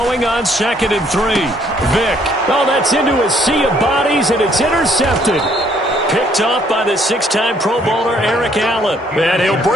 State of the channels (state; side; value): normal; both; correlation 0.65